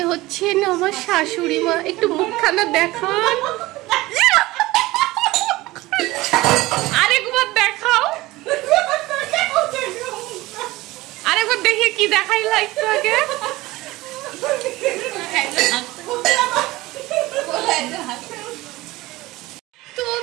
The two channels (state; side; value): quieter; left; 19.2 dB